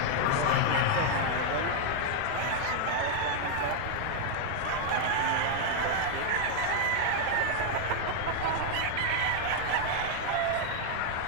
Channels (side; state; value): both; different; correlation 0.00